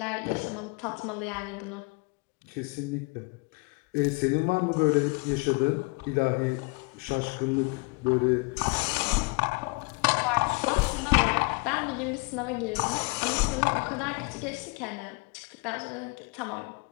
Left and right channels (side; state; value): right; quieter; 28.5 dB